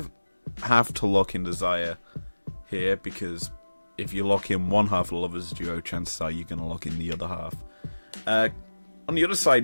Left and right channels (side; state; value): both; inverted; correlation -1.00